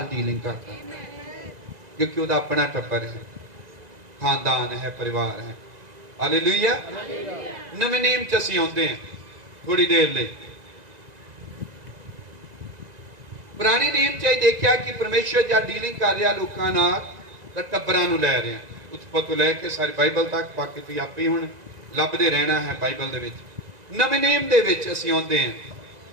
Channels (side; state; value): left; late; 2.0 ms